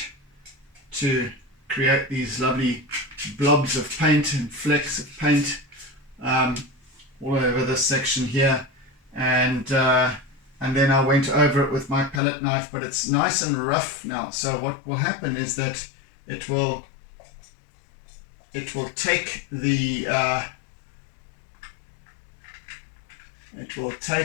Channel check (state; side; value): drops out; right; at 12.2 s